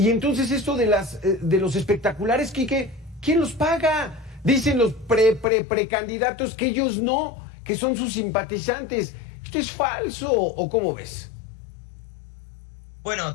entonces esto de los espectaculares, Quique, ¿quién los paga? Dicen los precandidatos que ellos no, que son sus simpatizantes. ¿Esto es falso o cómo ves? Bueno,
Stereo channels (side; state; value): right; drops out; at 5.5 s